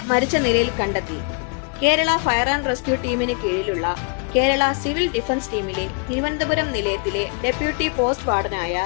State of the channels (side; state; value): right; quieter; 37.6 dB